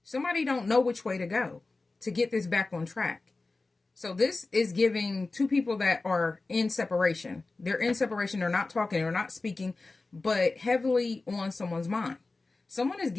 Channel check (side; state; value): right; quieter; 3.5 dB